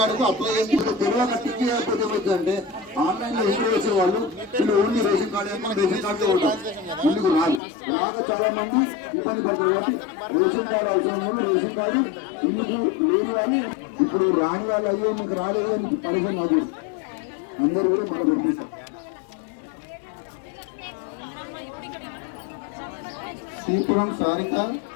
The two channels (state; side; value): drops out; right; at 7.6 s